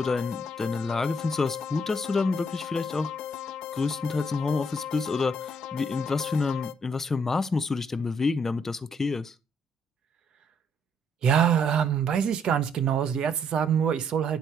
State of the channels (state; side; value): normal; both; correlation 0.70